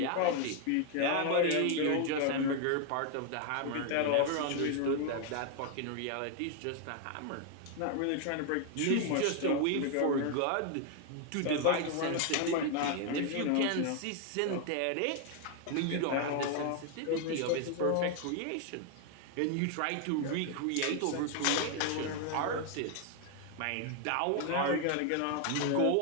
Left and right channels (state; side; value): different; both; correlation 0.01